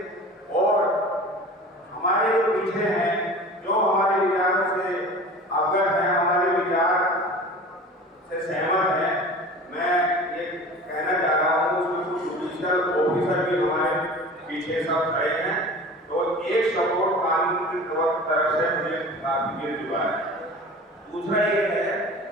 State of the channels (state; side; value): normal; both; correlation 0.39